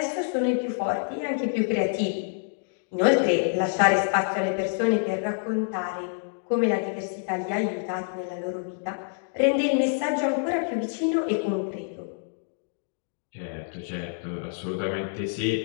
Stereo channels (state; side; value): silent; right; 59 dB below the other